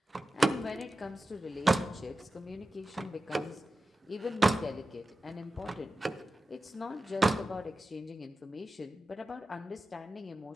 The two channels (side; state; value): both; normal; correlation 0.93